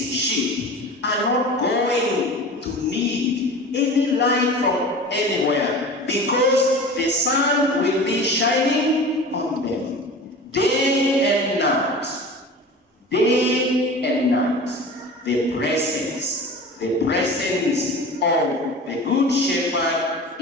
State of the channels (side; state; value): both; normal; correlation 0.36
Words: sheep are not going to need any light from anywhere, because the sun will be shining on them day and night. Day and night. The presence of the Good Shepherd